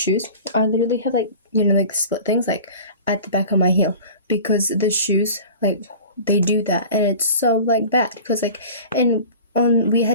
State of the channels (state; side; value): inverted; both; correlation -0.39